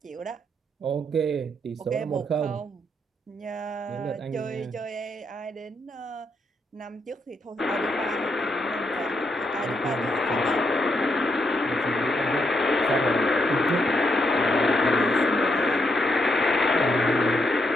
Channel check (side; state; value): both; normal; correlation 0.78